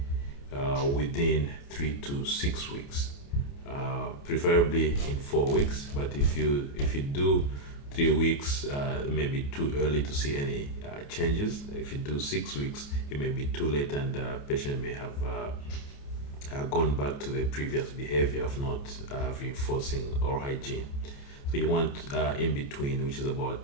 within 3 to 6 weeks, preferably in 4 weeks. But if you do 3 weeks, it may be too early to see any changes. If you do 6 weeks, it may be too late, and the patient may have gone back to the previous behavior of not reinforcing oral hygiene. So you want in between, which is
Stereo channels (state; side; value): late; right; 28 ms